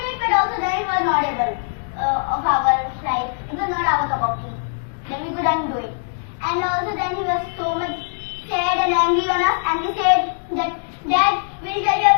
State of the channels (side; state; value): right; silent; digital silence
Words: it, but also then it was not able of our side. It was not our cup of tea. Then we couldn't do it. And also then he was so much sad and angry on us, and he said that Dad, we will tell you